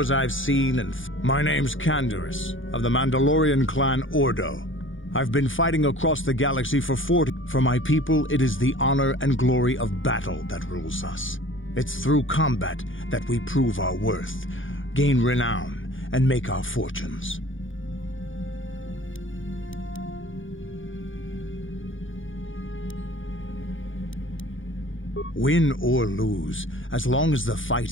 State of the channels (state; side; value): late; right; 0.57 ms